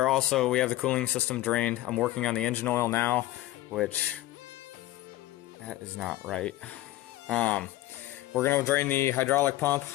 the cooling system drained. I'm working on the engine oil now, which that is not right. We're gonna drain the hydraulic pump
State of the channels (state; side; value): quieter; right; 16.2 dB